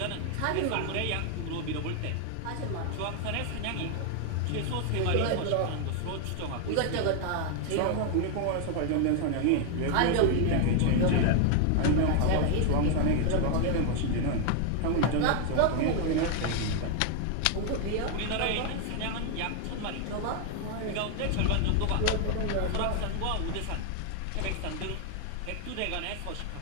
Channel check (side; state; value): both; different; correlation 0.00